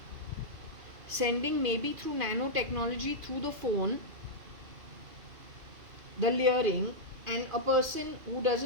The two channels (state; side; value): late; left; 2.5 ms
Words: sending, maybe through nanotechnology, through the phone, the luring, and a person who